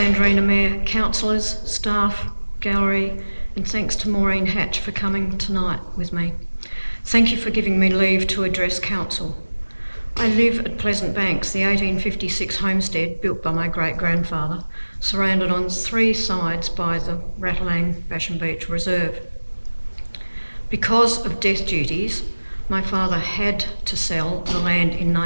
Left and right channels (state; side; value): inverted; both; correlation -1.00